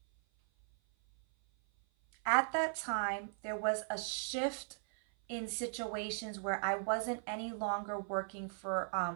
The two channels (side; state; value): left; silent; 53 dB below the other